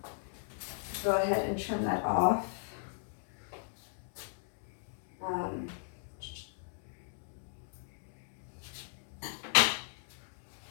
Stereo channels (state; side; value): silent; right; digital silence